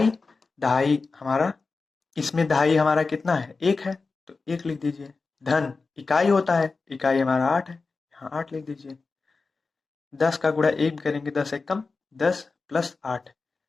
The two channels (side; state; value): right; quieter; 4.2 dB